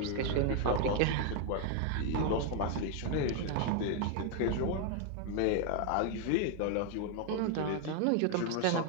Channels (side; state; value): both; different; correlation 0.00